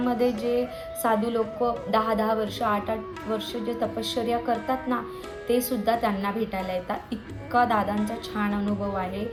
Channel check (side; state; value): both; identical; correlation 1.00